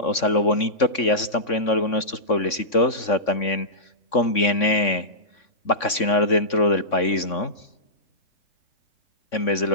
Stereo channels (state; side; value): late; right; 3.6 ms